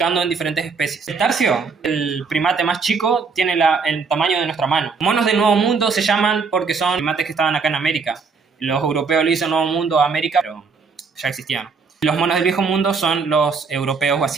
en diferentes especies. El tarcio, el primate más chico, tiene el tamaño de nuestra mano. Monos del Nuevo Mundo se llaman porque son primates que estaban acá en América. Los europeos le dicen Nuevo Mundo a América, pero ya existían. Los monos del Viejo Mundo son los europeos o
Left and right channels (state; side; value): quieter; left; 5.0 dB